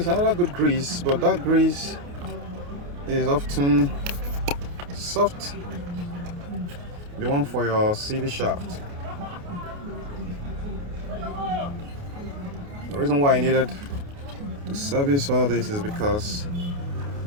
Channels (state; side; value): late; left; 28 ms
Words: another good grease, but that grease is often soft. The one for your CV shaft. The reason why I needed to service all this is because